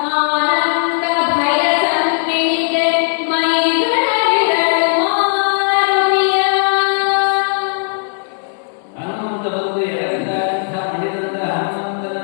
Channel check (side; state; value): right; silent; 69 dB below the other